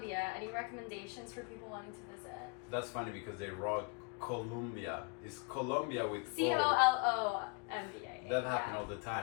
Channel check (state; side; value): quieter; right; 31.9 dB